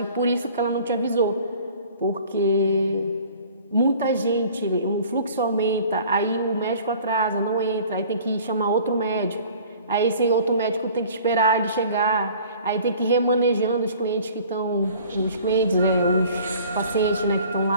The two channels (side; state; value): both; inverted; correlation -0.49